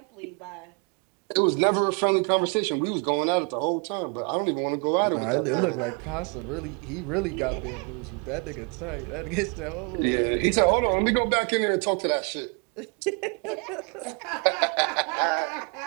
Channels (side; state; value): left; quieter; 36.0 dB